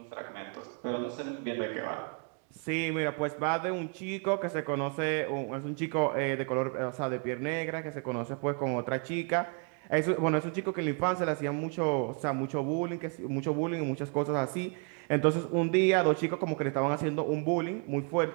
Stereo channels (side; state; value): left; quieter; 38.4 dB